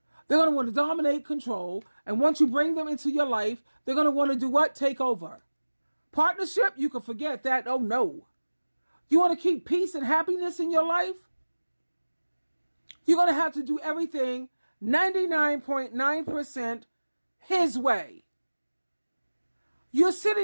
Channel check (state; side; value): inverted; both; correlation -1.00